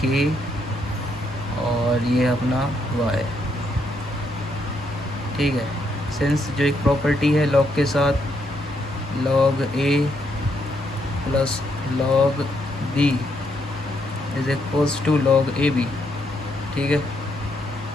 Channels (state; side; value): normal; both; correlation 0.76